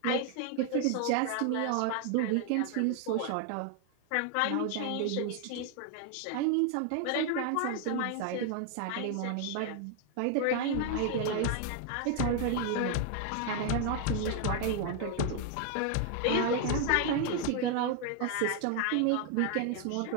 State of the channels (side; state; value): both; different; correlation 0.00